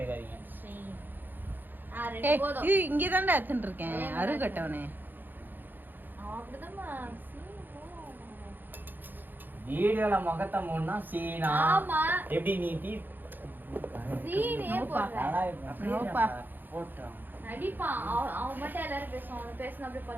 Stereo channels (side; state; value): left; late; 0.089 ms